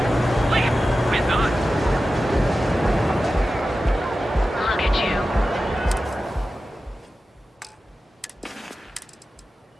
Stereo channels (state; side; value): normal; both; correlation 0.93